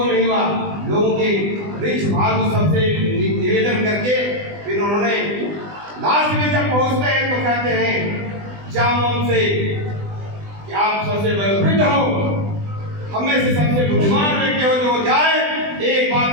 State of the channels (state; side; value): late; left; 20 ms